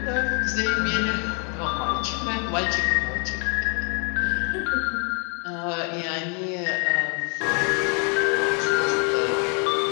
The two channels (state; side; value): quieter; right; 37.8 dB